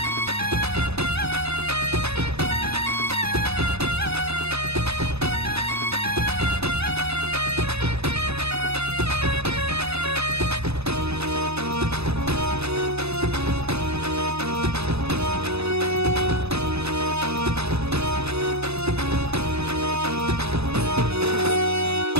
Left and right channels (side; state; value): left; late; 0.79 ms